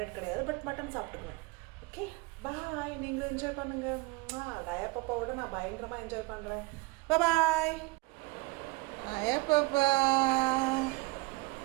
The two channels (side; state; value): left; quieter; 24.6 dB